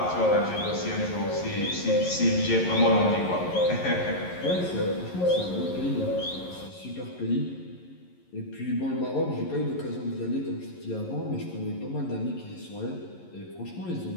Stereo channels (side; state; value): right; late; 11 ms